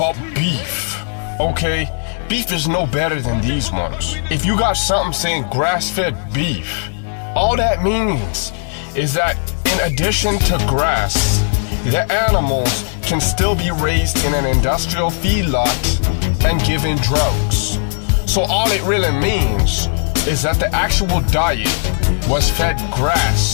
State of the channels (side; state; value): right; silent; 62 dB below the other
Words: beef, okay? Beef is no better than these ones. If you got something saying grass-fed beef, all that means is that in addition to grass, the animals can still be raised in an industrial feedlot and given drugs. So all it really means is that the actual diet was fed